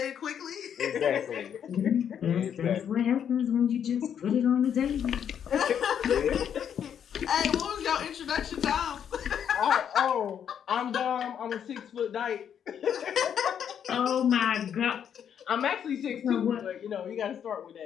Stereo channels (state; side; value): quieter; right; 8.6 dB